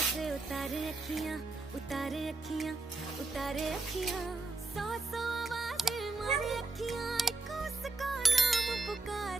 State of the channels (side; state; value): left; quieter; 3.5 dB